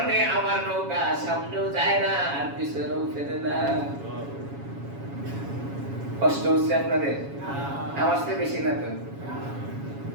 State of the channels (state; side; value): late; left; 7.2 ms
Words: আমার নৌকা সামনেও যায় না আর পিছনেও ফেরে না। কষ্ট হচ্ছে আপনাদের? আমার চেয়ে বেশি না তো?